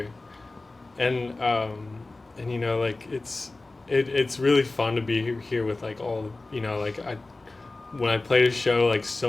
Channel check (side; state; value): right; quieter; 3.2 dB